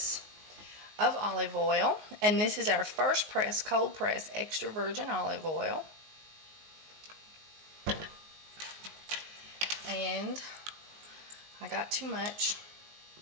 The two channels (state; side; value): late; left; 19 ms